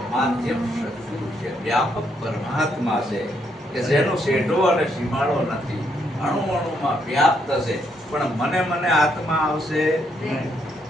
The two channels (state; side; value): normal; both; correlation 0.75